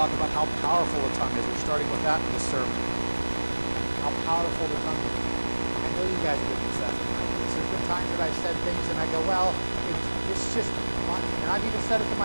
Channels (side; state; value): both; inverted; correlation -1.00